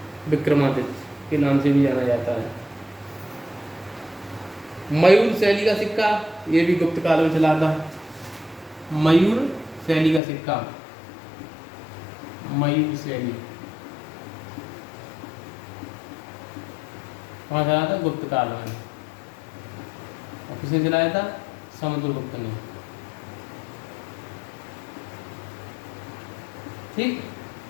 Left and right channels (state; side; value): drops out; right; at 10.2 s